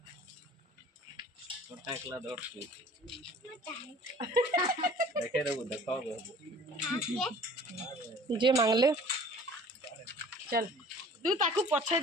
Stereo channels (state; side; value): normal; both; correlation 0.48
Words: छोटा एकला दौड़ के देखे रे देखो जे मांगले चल तू ताकू पछे